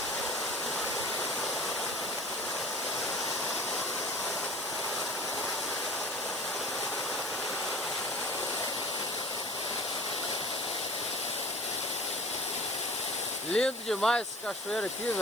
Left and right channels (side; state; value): right; noise; hiss, 15 dB below the sound